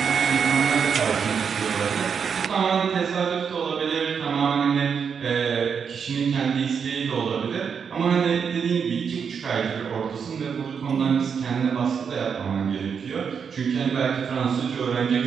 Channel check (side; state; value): left; quieter; 6.6 dB